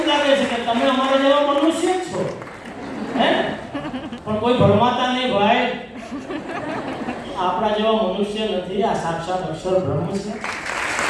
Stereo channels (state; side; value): identical; both; correlation 1.00